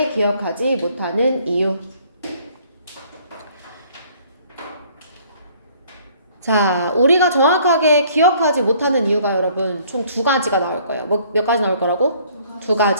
기억하지 못하는 이유. 자, 우리가 정확하게 기억하지 못하는 이유가 여러분 총 두 가지가 나올 거예요. 몇 가지 나올 거라고? 두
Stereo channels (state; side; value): inverted; both; correlation -0.59